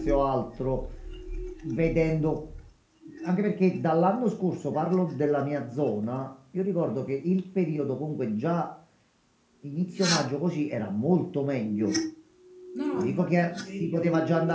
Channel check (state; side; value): identical; both; correlation 1.00